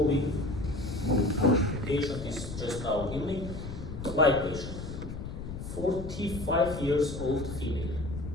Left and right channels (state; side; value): noise; left; rumble, 8 dB below the sound